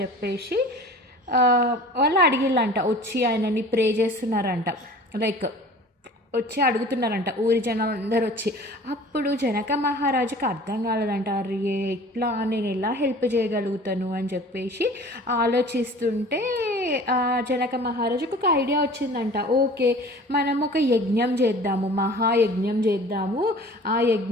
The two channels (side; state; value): both; normal; correlation 0.44